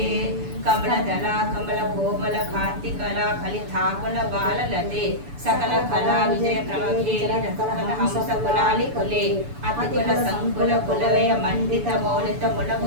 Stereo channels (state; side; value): late; left; 6.9 ms